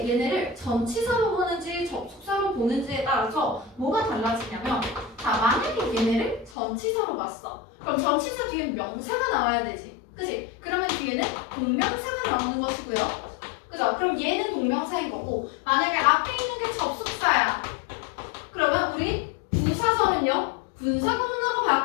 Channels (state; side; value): drops out; right; at 6.6 s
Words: 얘네를 전치사로 보는지 접속사로 보는지에 따라서 뭐가 달라지냐면, 자, 만약에 얘네를 전치사로 봤어. 그럼 전치사 뒤에 명사가 나와야 되지. 그지? 그러면 뒤에는 동명사가 나오는 것이고요. 그죠? 그럼 얘는 동명사인 거고, 만약에 앞에 있는 게 접속사야. 그러면 우리 부사절은요, 분사구문으로